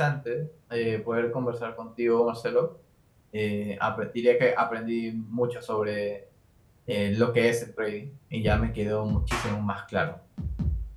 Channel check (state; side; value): identical; both; correlation 1.00